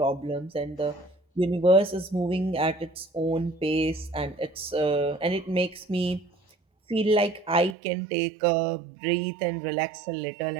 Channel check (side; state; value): left; drops out; at 7.8 s